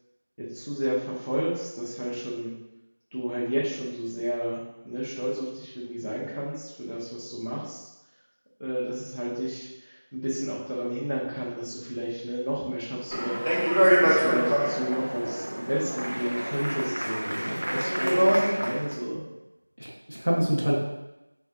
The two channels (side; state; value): both; inverted; correlation -1.00